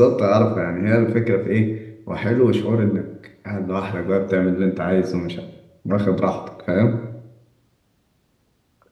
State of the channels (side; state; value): both; identical; correlation 1.00